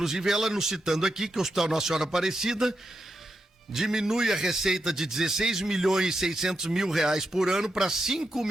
ela nos citando aqui que o Hospital Nossa Senhora Aparecida diminui a receita de 16 milhões e 600 mil reais por ano para 5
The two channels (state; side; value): normal; both; correlation 0.86